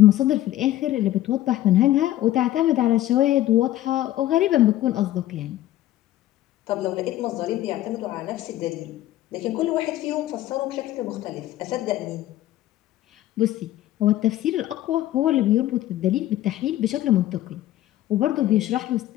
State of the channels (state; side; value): quieter; right; 14.3 dB